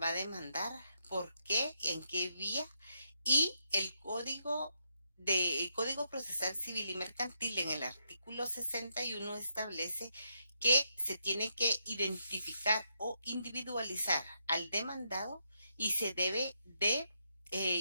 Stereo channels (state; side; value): inverted; both; correlation -0.80